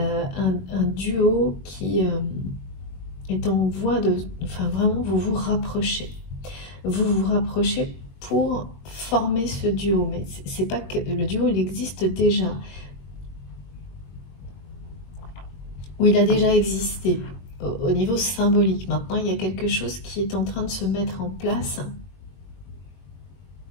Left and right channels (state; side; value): late; right; 22 ms